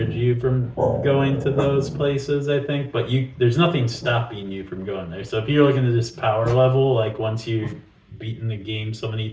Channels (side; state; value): both; identical; correlation 1.00